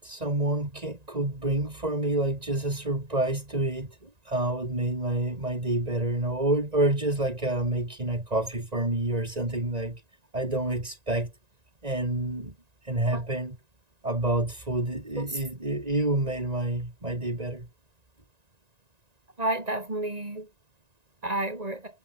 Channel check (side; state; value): left; late; 1.9 ms